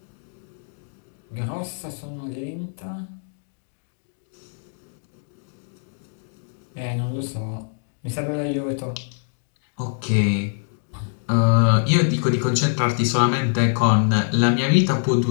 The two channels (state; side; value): silent; right; digital silence